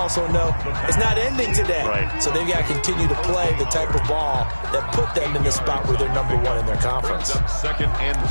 know it's not ending today. Right. So they've got to continue to play the type of ball that put them in the spot where they're #1 in their conference. Brings up 2nd and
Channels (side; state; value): both; inverted; correlation -1.00